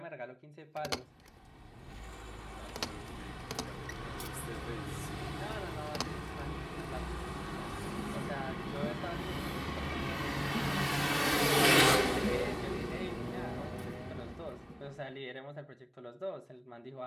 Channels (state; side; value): identical; both; correlation 1.00